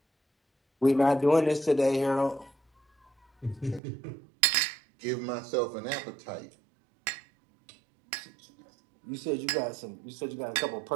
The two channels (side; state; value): left; drops out; at 3.8 s